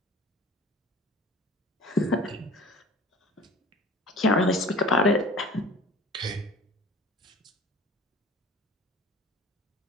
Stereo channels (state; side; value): normal; both; correlation 0.43